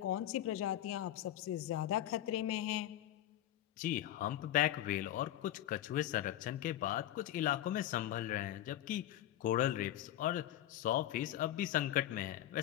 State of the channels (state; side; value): quieter; right; 13.0 dB